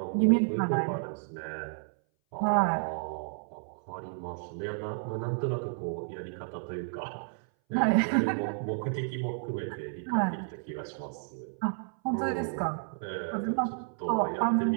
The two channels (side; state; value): left; silent; 57 dB below the other